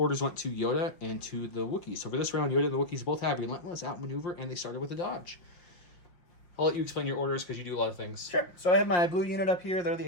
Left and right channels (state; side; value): late; right; 5.6 ms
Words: went to Yoda and to the Wookiees. So for this round, Yoda and the Wookiees both have relentless outmaneuver, and they started with a dodge. I'll let you explain your orders because you do a lot of things. Sure. So I have my blue unit up here. They're